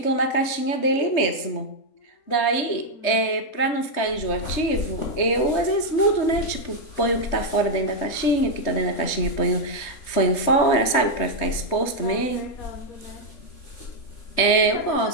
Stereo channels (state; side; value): late; right; 3.3 ms